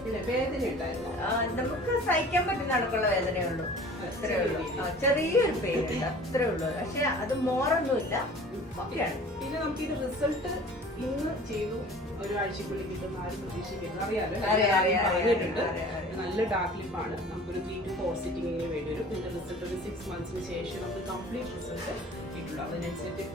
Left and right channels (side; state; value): both; normal; correlation 0.45